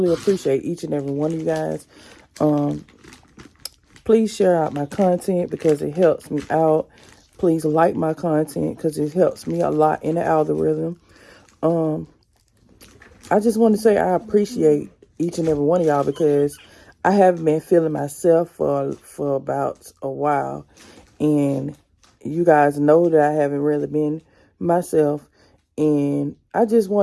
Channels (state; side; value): identical; both; correlation 1.00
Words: appreciate each and every one of you guys. Please share out my content because it helps me out. Please like my content because it helps me a lot in the algorithm. I just want to say I appreciate each and every one of y'all because I haven't been feeling myself for about a while, and you guys know that I haven't really been myself. And I just